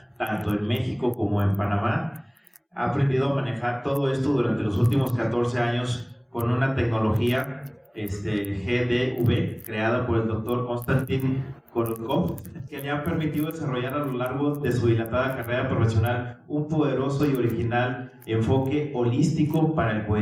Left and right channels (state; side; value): identical; both; correlation 1.00